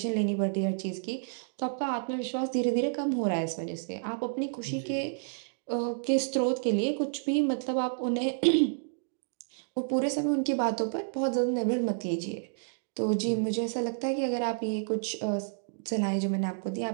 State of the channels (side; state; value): left; silent; digital silence